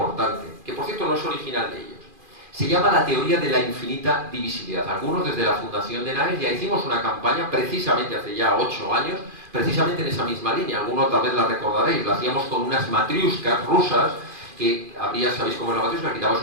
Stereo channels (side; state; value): left; late; 2.4 ms